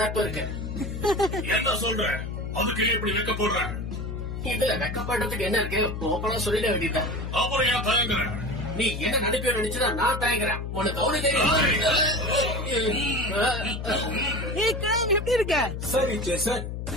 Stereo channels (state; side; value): noise; left; hum, 5 dB below the sound